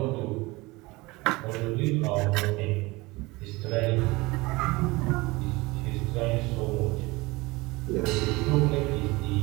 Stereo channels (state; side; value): quieter; left; 22.7 dB